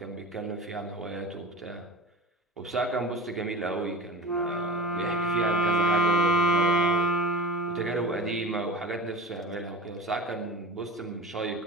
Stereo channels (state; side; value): normal; both; correlation 0.32